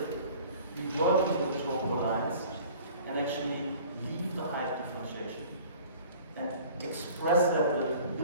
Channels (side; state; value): both; inverted; correlation -0.48